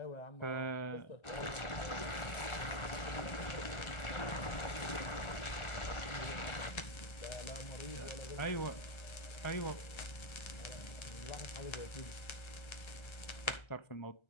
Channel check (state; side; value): late; right; 1.3 ms